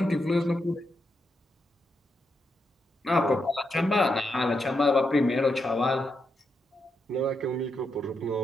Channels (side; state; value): both; normal; correlation 0.83